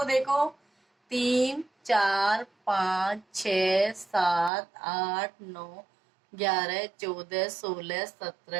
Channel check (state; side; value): drops out; left; at 4.5 s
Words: देखो, 3, 4, 5, 6, 7, 8, 9, 11, 14, 16,